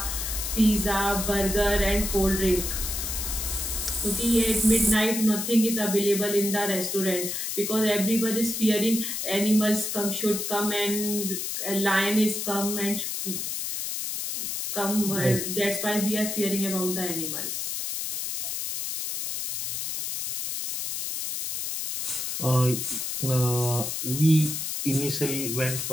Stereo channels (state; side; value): noise; left; hiss, 3 dB below the sound